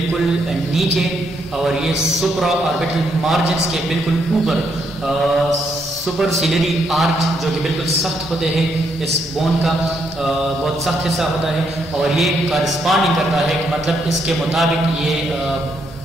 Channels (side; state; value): both; normal; correlation 0.75